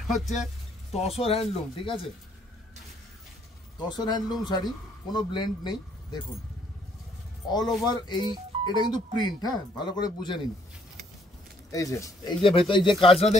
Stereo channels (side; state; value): both; normal; correlation 0.66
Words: হচ্ছে তসর হ্যান্ডলুম, ঠিক আছে, তসর হ্যান্ডলুম শাড়ি, কোনো ব্লেন্ড নেই। দেখুন অল ওভার এটা কিন্তু প্রিন্ট, হ্যাঁ ভালো করে বুঝে নিন। এই যে ভেতরে এই যে কাজটা